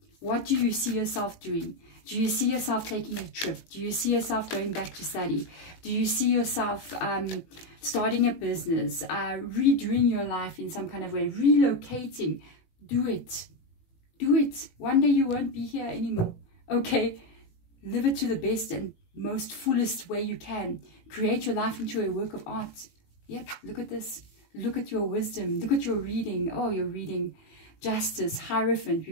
What do you see yourself doing? Do you see yourself taking a trip? Do you see yourself going back to study? Do you see yourself starting a business, redoing your life in some kind of way, relocating? Do it. Do it. One day you won't be here anymore. Okay? Live it to the best and most fullest way you can. Create your life into a work of art. Yep, look at this. Look at your wisdom. Look at your reading. Oh, you're reading Justice, Hierophant.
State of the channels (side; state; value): right; late; 19 ms